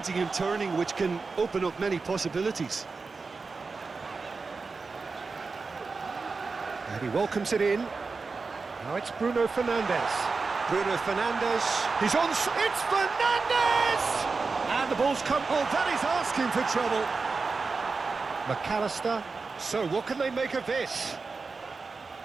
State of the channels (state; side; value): quieter; left; 4.3 dB